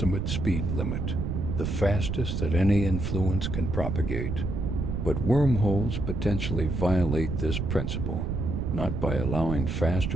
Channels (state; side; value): noise; right; rumble, 2 dB below the sound